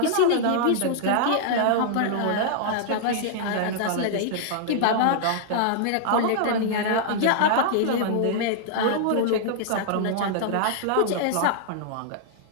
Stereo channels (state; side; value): different; both; correlation -0.01